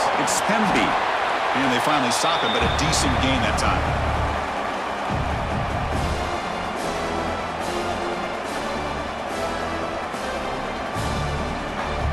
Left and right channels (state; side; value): identical; both; correlation 1.00